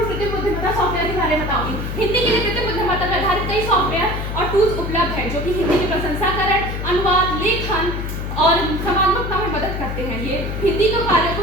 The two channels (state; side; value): noise; left; hum, 4 dB below the sound